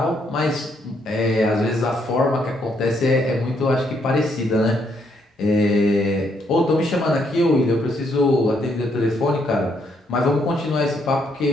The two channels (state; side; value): normal; both; correlation 0.73